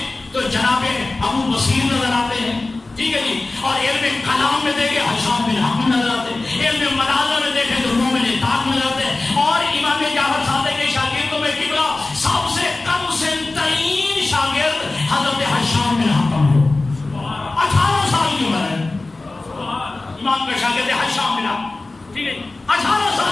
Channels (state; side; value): quieter; right; 3.2 dB